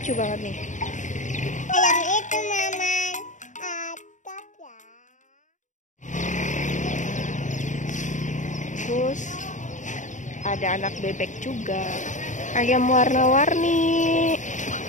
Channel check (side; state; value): right; late; 0.36 ms